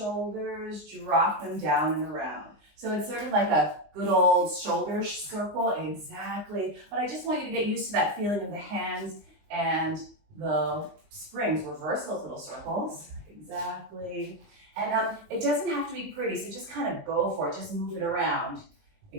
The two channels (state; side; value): late; left; 19 ms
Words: drop them down and around. So it's sort of like a good old shoulder circle, exactly. But I just want you to get used to that feeling of the hands and the springs. Reverse those little circles, exactly. And it doesn't have to be pretty, so just kind of go for it, just move it around.